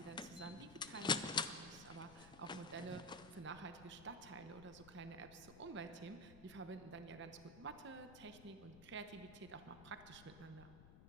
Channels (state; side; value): noise; left; rumble, 16 dB below the sound